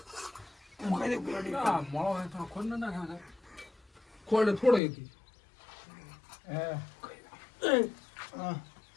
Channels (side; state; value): right; drops out; at 4.8 s